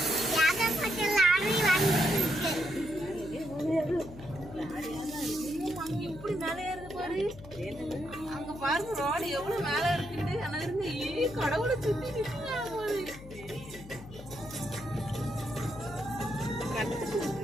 எப்படி மேலே ஏறுது பாரு. அங்க பாருங்க ரோடு எவ்வளவு மேல இருக்குது. ஆனா இருந்து கடவுளை சுத்தி நிற்கிறாங்க போது.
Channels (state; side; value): noise; left; hum, 16 dB below the sound